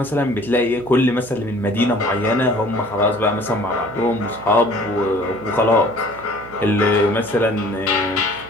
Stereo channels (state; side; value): noise; right; hum, 19 dB below the sound